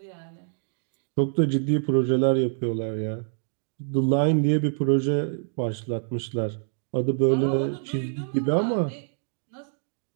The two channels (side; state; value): left; silent; digital silence